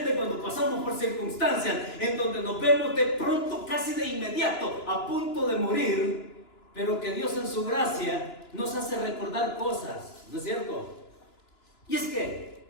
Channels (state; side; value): late; right; 2.9 ms